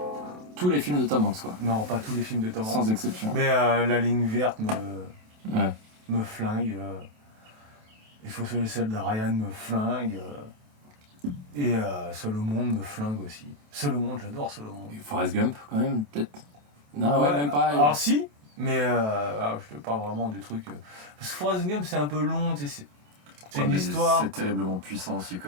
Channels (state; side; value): late; left; 28 ms